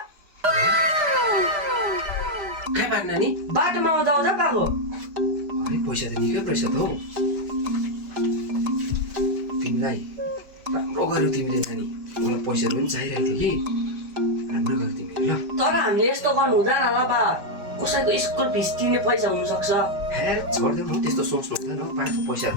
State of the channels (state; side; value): late; left; 5.0 ms